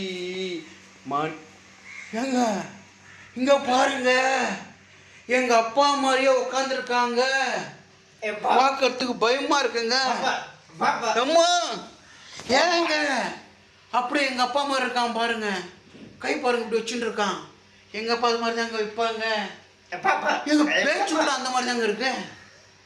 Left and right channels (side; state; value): both; identical; correlation 1.00